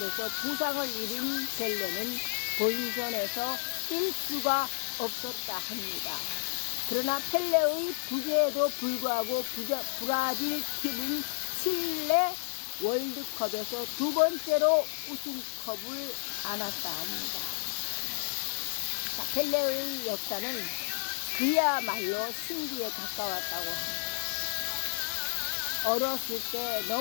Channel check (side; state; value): right; silent; digital silence